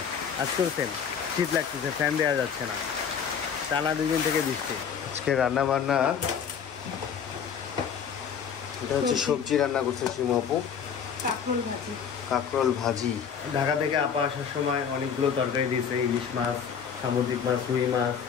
আজকেও সেম শীত লাগতেছে, ফ্যান দেওয়া যাচ্ছে না, টানা 2 দিন থেকে বৃষ্টি। আজকে রান্না বান্না, এটা হচ্ছে সবজি রান্না করছে শিমু আপু, কাঁকরোল ভাজি। ঢাকা থেকে আপা আসার সময় অনেকগুলো তরকারি দিয়েছে, ইলিশ মাছ, সামুদ্রিক মাছ, রুই মাছ,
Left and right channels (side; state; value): right; quieter; 7.3 dB